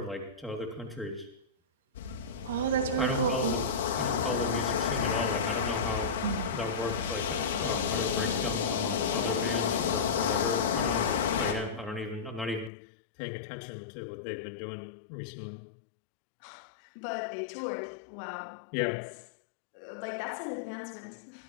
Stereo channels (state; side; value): drops out; right; at 12.7 s